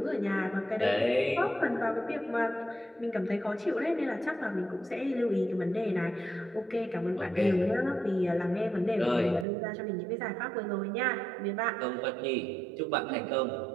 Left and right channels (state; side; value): drops out; left; at 9.5 s